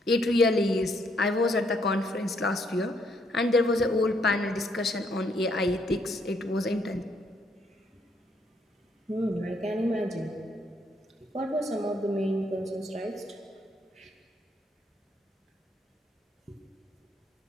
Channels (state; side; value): normal; both; correlation 0.71